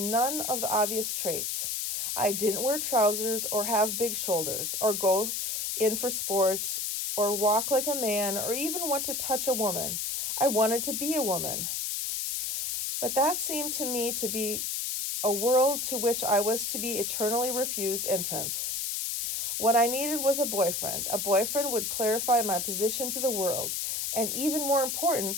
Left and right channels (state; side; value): noise; left; hiss, 2 dB below the sound